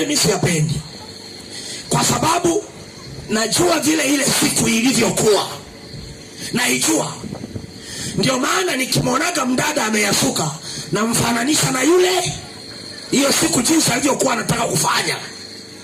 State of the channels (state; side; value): identical; both; correlation 1.00